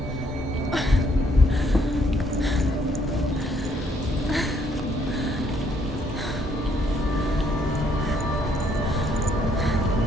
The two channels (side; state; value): both; normal; correlation 0.68